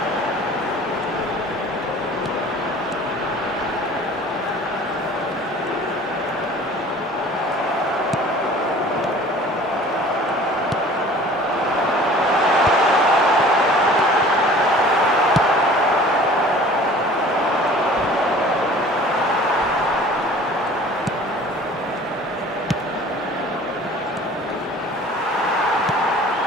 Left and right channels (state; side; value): normal; both; correlation 0.47